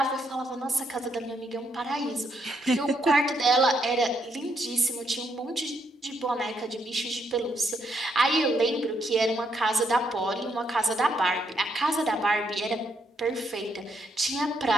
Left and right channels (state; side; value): normal; both; correlation 0.76